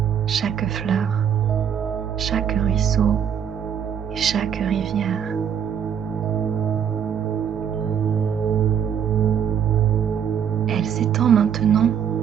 chaque fleur, chaque ruisseau et chaque rivière. Elle s'étend maintenant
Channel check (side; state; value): left; quieter; 8.3 dB